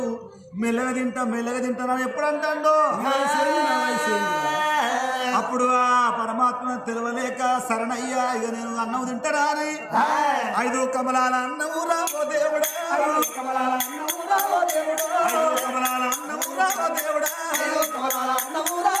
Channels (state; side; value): identical; both; correlation 1.00